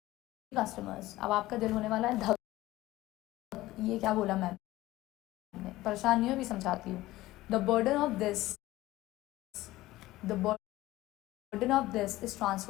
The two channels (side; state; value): right; quieter; 17.2 dB